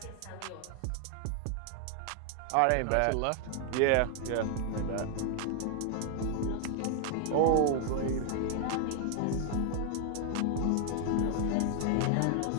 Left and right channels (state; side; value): different; both; correlation 0.00